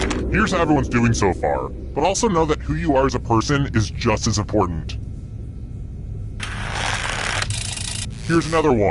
Here's how everyone's doing so far, but also know that who you are as a person is just as important. Here's another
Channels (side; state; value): both; identical; correlation 1.00